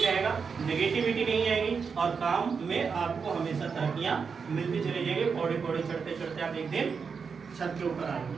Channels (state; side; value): quieter; left; 5.7 dB